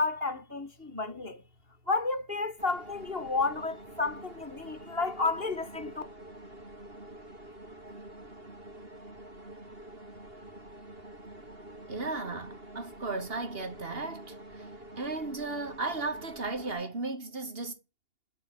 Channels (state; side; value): late; left; 2.8 ms